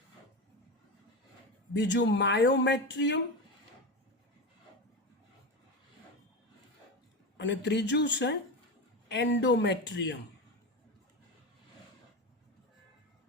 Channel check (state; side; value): normal; both; correlation 0.20